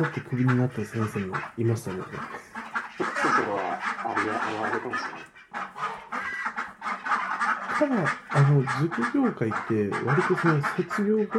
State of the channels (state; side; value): identical; both; correlation 1.00